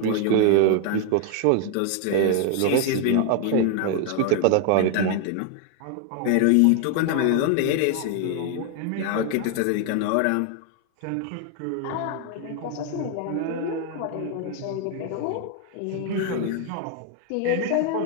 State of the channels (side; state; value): both; different; correlation 0.00